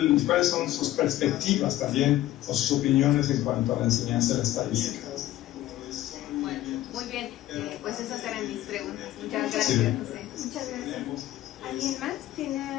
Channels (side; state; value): right; quieter; 14.4 dB